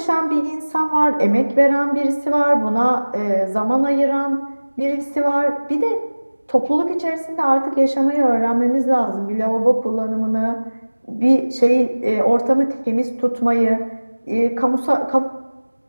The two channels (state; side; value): inverted; both; correlation -1.00